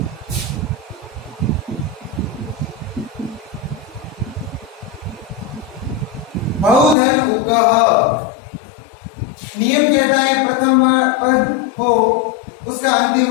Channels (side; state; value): right; drops out; at 7.0 s